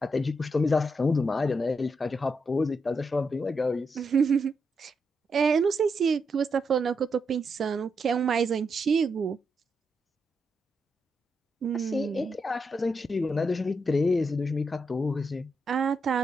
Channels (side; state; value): both; normal; correlation 0.83